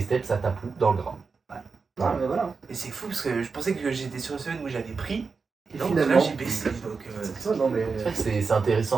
ça tape où? Dans le gras. Ah, mais voilà. Et c'est fou parce que je pensais que j'étais sur une semaine où j'avais pris. Et Et non, finalement- là j'ai baissé. Donc, Ça, non, mais. C'est vrai que c'est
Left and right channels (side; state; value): left; quieter; 4.8 dB